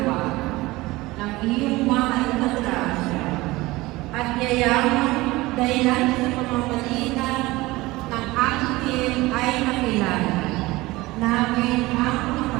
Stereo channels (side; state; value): left; quieter; 20.1 dB